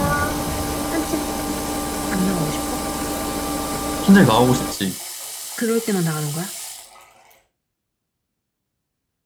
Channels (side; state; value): both; identical; correlation 1.00